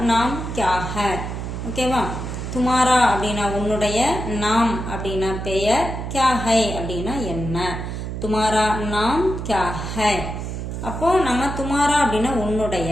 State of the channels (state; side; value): noise; right; hum, 5 dB below the sound